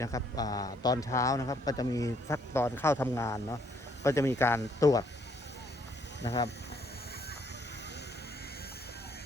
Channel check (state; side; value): normal; both; correlation 0.67